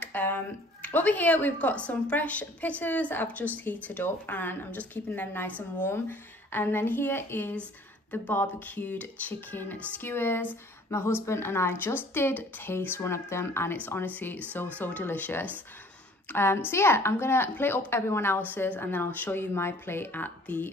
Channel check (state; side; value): normal; both; correlation 0.54